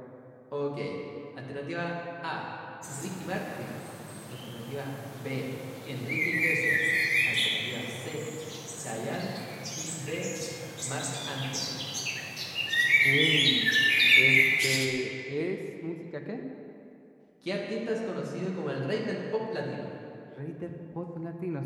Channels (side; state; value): both; identical; correlation 1.00